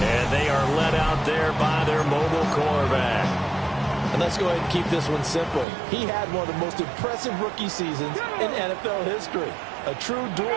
they are led out there by their mobile quarterback. And let's go ahead and keep this one simple. He had one of the most impressive rookie seasons in NFL history. A true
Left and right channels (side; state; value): left; drops out; at 5.7 s